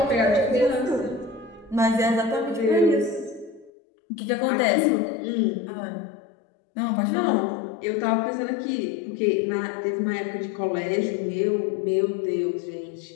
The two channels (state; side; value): drops out; right; at 3.7 s